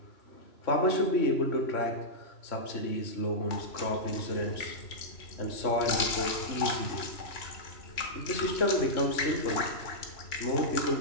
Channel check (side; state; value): right; late; 3.0 ms